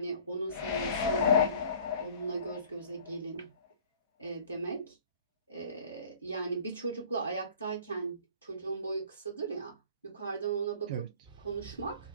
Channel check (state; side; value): inverted; both; correlation -0.49